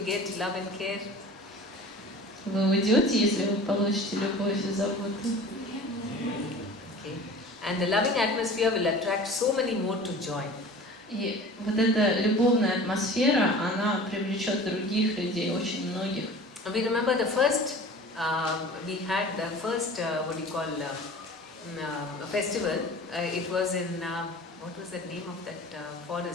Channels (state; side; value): normal; both; correlation 0.41